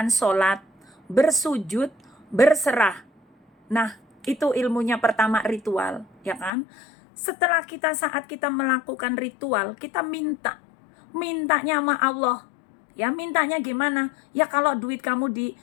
sholat, bersujud, berserah. Nah, itu ilmunya pertama, ritual, ya kan? Setelah saat kita melakukan ritual, kita mintanya sama Allah. Ya, mintanya gimana? Ya kalau duit kamu di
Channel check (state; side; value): drops out; right; at 6.5 s